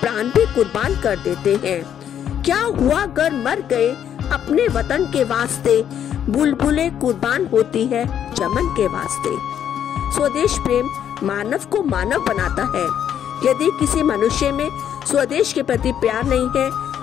प्राण भी कुर्बान कर देते हैं। क्या हुआ अगर मर गए अपने वतन के वास्ते, बुलबुलें कुर्बान होती है चमन के वास्ते। स्वदेश प्रेम मानव को मानव बनाता है। यदि किसी मनुष्य में स्वदेश के प्रति प्यार नहीं है,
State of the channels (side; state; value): right; quieter; 9.5 dB